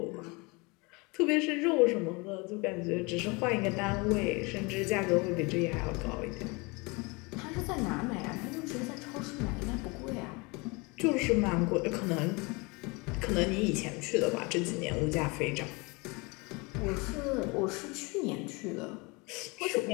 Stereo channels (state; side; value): quieter; right; 27.3 dB